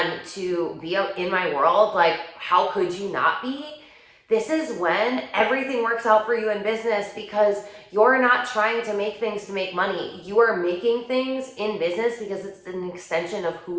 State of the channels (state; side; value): identical; both; correlation 1.00